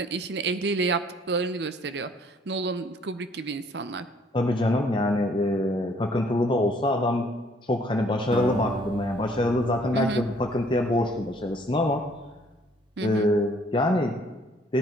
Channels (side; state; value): both; normal; correlation 0.61